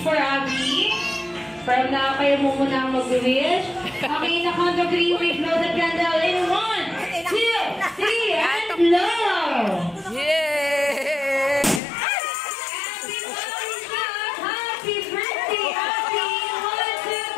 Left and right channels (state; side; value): drops out; right; at 11.8 s